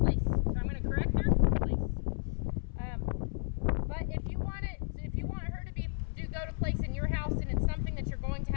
So I'm going to correct her. Place. But if you want her to go to place in your house, and it's something that you're going to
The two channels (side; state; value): right; silent; 56 dB below the other